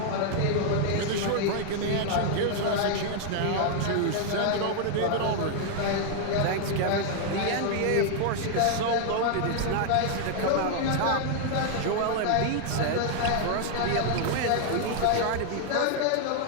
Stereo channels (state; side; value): different; both; correlation 0.00